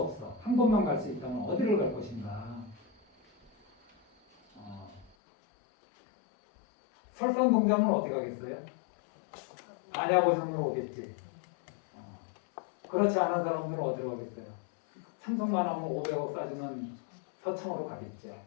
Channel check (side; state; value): right; drops out; at 5.1 s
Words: 없어. 한 곳만 갈 수 있다면 어디를 갈 것인가? 설산동자면 어디 가겠어요? 안야보전으로 오겠지. 그렇지 않은 사람들은 어디로 가겠어요? 참석만 하면 500억 싸주는 서창으로 가겠죠.